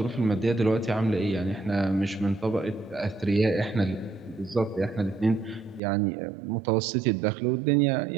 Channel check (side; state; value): left; drops out; at 5.8 s